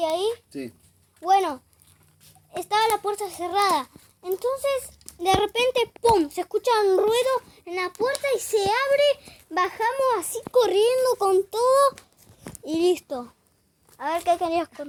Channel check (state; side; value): identical; both; correlation 1.00